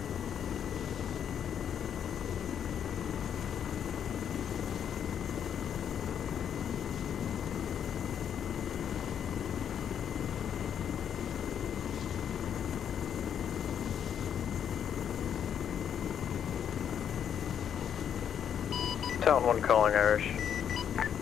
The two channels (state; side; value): quieter; right; 8.6 dB